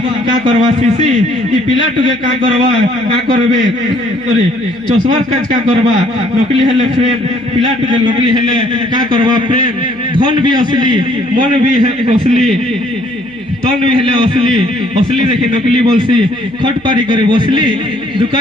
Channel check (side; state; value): right; noise; hum, 26 dB below the sound